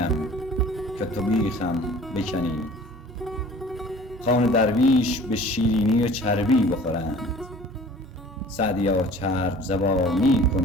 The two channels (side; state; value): both; normal; correlation 0.47